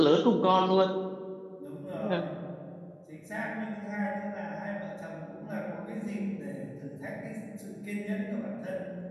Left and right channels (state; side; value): identical; both; correlation 1.00